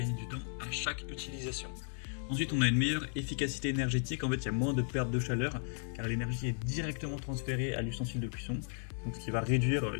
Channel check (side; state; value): right; silent; 54 dB below the other